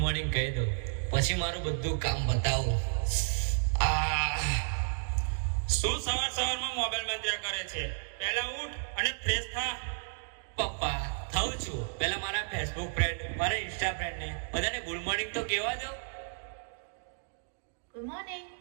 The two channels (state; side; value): silent; left; digital silence